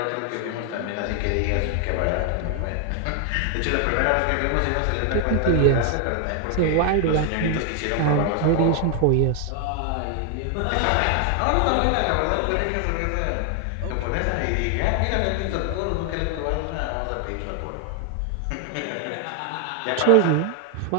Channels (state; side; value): different; both; correlation 0.00